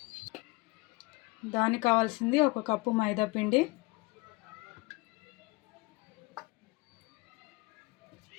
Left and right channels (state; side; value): quieter; right; 25.1 dB